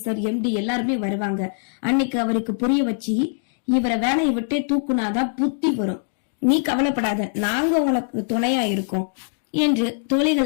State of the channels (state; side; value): silent; right; 64 dB below the other